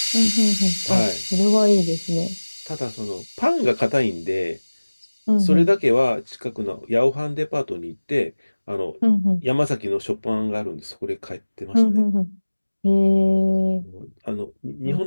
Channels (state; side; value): inverted; both; correlation -1.00